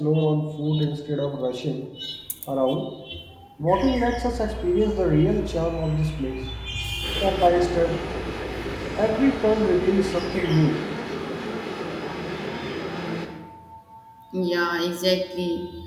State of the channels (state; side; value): identical; both; correlation 1.00